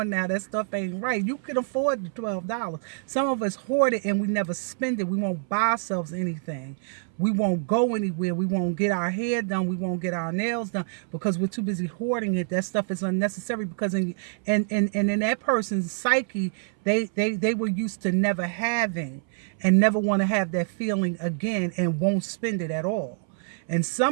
now, that stuff ain't right. You can afford the $12. Some of us hoard it and we never spend it. We won't buy ourselves anything. We won't go anywhere. We won't get our hair done. We won't get our nails done, because we're too busy hoarding it. That stuff is unnecessary, because in that person's psyche, they were used to never having, and never want to have that feeling again, and won't spend it at all. And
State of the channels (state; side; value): silent; left; 61 dB below the other